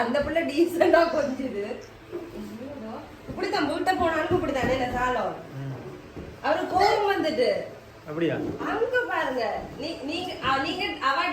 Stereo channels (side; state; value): both; identical; correlation 1.00